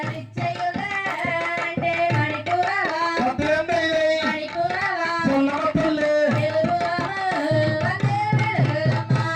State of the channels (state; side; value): identical; both; correlation 1.00